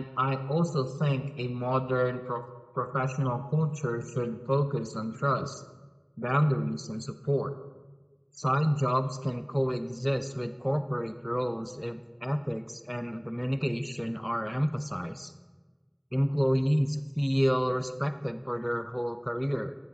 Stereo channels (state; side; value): identical; both; correlation 1.00